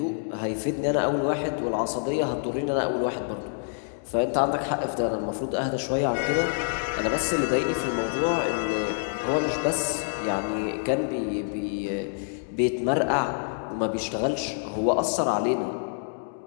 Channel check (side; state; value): right; silent; digital silence